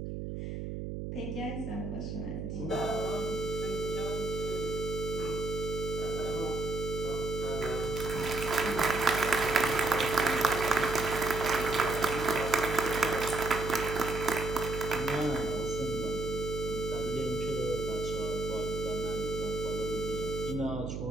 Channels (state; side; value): noise; right; hum, 5 dB below the sound